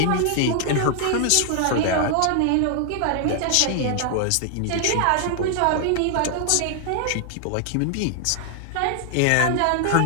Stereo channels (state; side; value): different; both; correlation 0.00